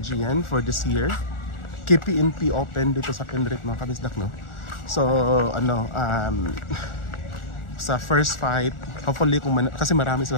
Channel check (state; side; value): late; right; 1.4 ms